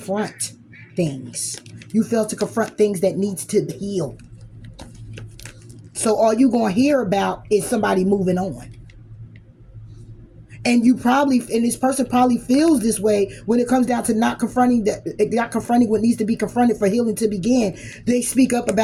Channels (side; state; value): both; identical; correlation 1.00